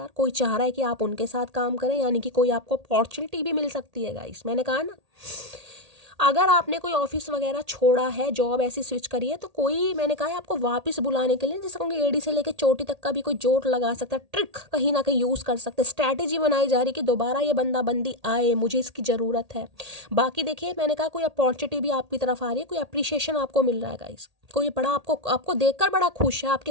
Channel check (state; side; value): late; left; 1.8 ms